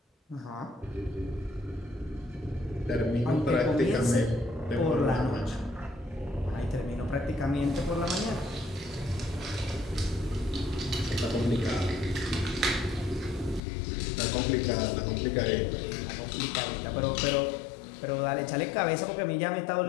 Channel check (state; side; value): drops out; right; at 13.6 s